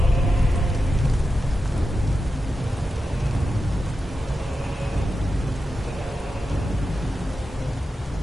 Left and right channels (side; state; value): both; normal; correlation 0.90